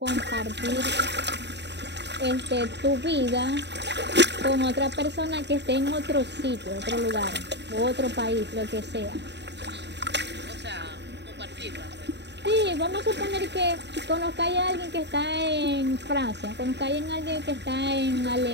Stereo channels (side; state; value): left; late; 0.50 ms